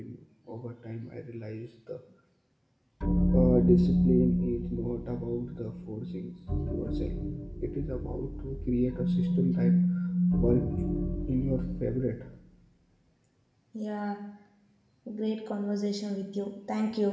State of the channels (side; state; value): both; identical; correlation 1.00